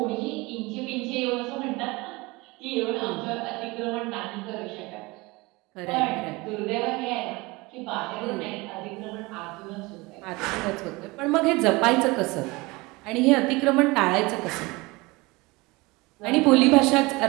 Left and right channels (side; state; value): left; quieter; 23.6 dB